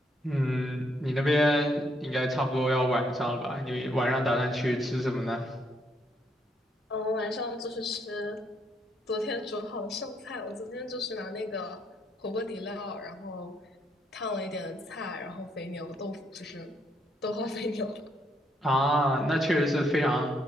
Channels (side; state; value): both; normal; correlation 0.73